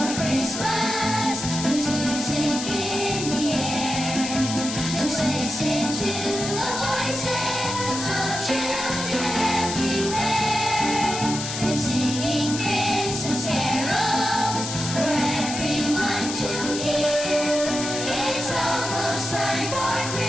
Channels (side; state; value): left; noise; hiss, 6 dB below the sound